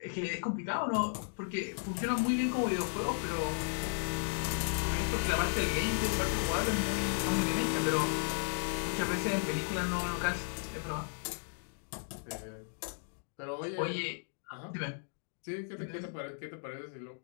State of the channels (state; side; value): silent; right; digital silence